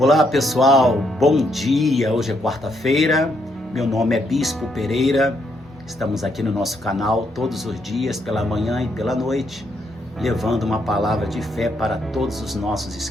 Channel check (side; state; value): both; normal; correlation 0.75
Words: pessoal, bom dia, hoje é quarta-feira, meu nome é Bispo Pereira, estamos aqui no nosso canal todos os dias, pela manhã e pela noite, levando uma palavra de fé para todos os nossos